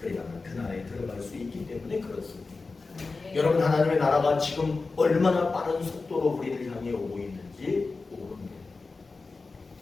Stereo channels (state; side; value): quieter; right; 3.9 dB